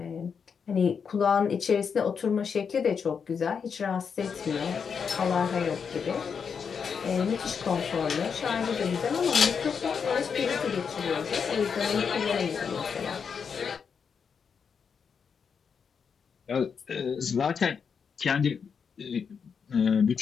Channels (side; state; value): right; quieter; 6.4 dB